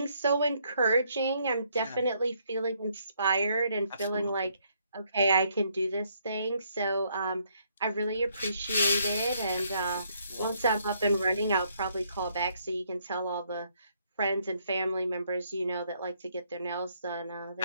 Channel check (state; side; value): inverted; both; correlation -0.70